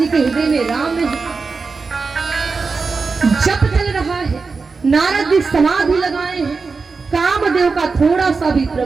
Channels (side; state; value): left; quieter; 4.5 dB